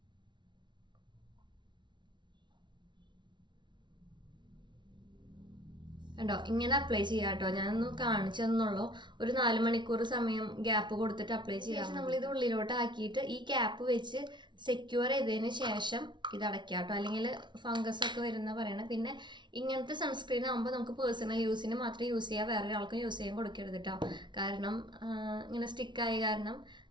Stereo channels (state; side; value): late; left; 0.23 ms